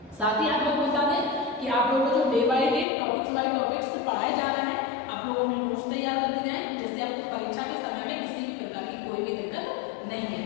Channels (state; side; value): drops out; right; at 2.9 s